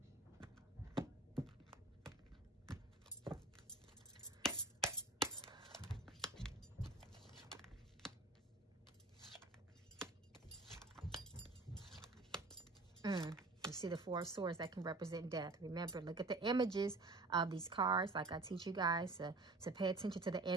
You see the Four of Swords, that can represent death. Remember, look at the images of these cards. Like I teach you guys to pay attention to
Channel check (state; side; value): quieter; left; 3.1 dB